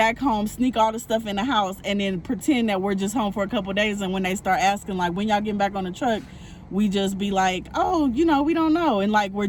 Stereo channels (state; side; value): identical; both; correlation 1.00